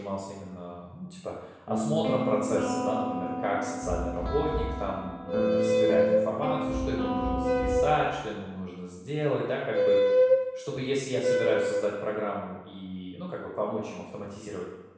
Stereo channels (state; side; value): identical; both; correlation 1.00